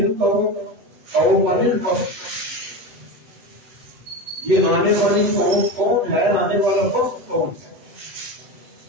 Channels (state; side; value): late; left; 8.0 ms